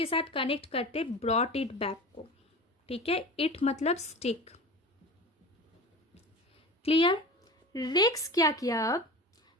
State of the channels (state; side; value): normal; both; correlation 0.33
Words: साथ कनेक्ट करते ब्रॉट इट बैक को. ठीक है, इट मतलब स्टिक. क्लियर. रेक्स क्या किया? अब